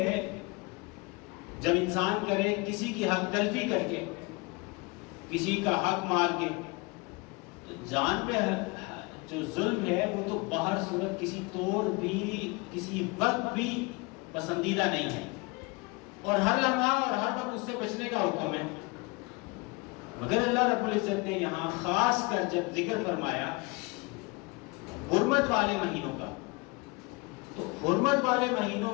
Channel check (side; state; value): right; quieter; 27.0 dB